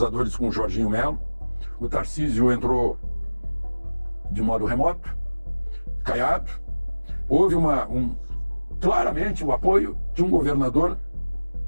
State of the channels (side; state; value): both; inverted; correlation -1.00